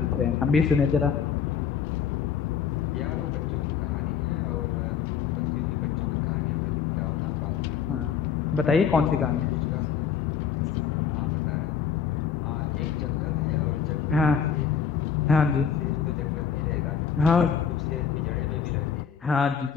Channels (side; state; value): right; quieter; 7.5 dB